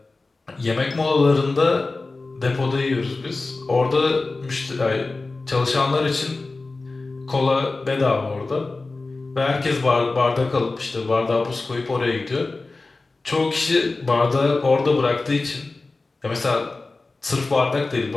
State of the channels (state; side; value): quieter; right; 3.5 dB